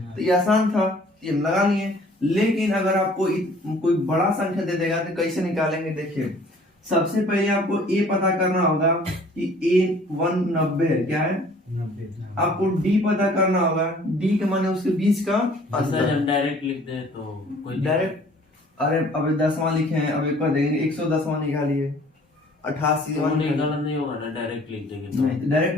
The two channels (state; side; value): normal; both; correlation 0.53